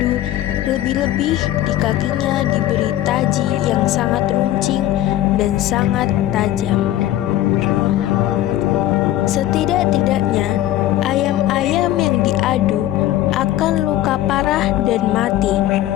lebih-lebih di kakinya diberi taji yang sangat runcing dan sangat tajam. Setidak-tidaknya ayam-ayam yang diadu akan luka parah dan mati.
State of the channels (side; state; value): right; quieter; 13.8 dB